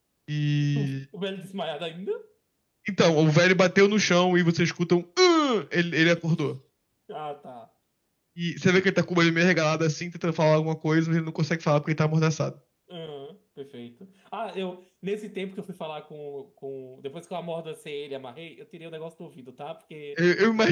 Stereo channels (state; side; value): identical; both; correlation 1.00